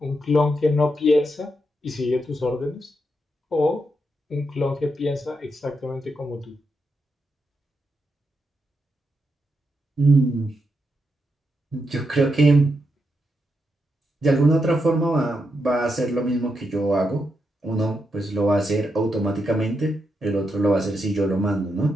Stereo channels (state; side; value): normal; both; correlation 0.83